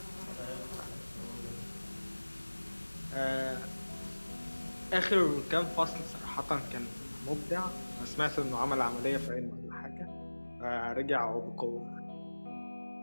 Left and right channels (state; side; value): inverted; both; correlation -1.00